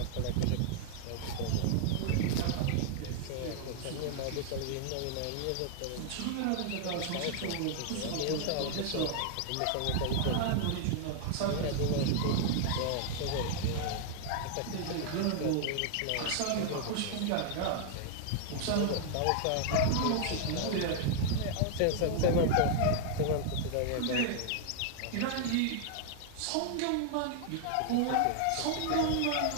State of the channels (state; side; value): different; both; correlation 0.00